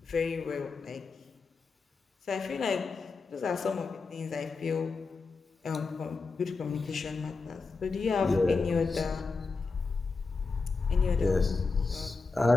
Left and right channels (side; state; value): right; quieter; 4.2 dB